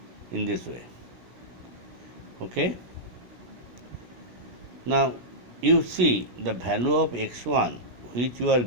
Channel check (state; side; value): late; left; 17 ms